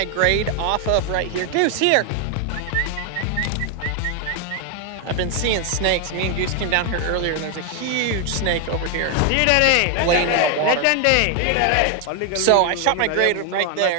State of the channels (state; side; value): different; both; correlation 0.01